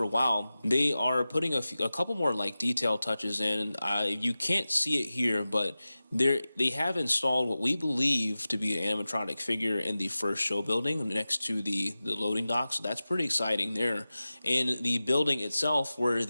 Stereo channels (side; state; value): both; inverted; correlation -0.96